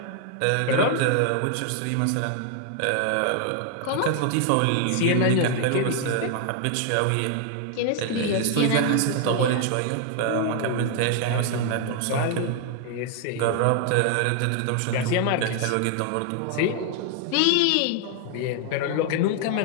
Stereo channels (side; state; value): both; different; correlation 0.00